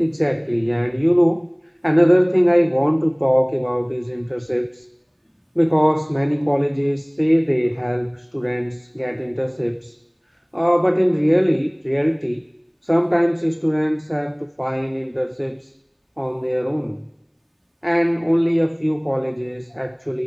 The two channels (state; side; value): identical; both; correlation 1.00